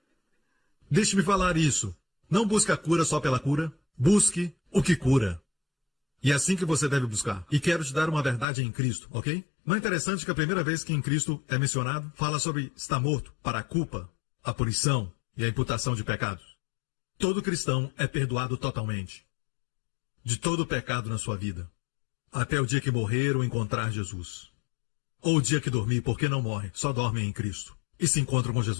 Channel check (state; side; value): drops out; right; at 8.5 s